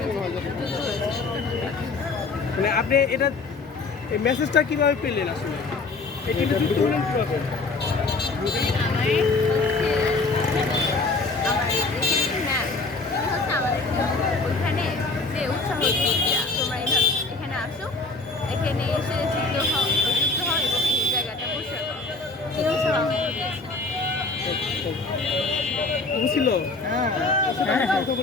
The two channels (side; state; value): right; quieter; 3.7 dB